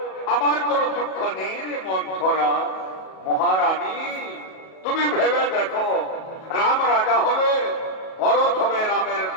আমার কোনো দুঃখ নেই রে মন্থরা। মহারানী, তুমি ভেবে দেখো, রাম রাজা হলে ভরত হবে রামের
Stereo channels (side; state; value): right; late; 37 ms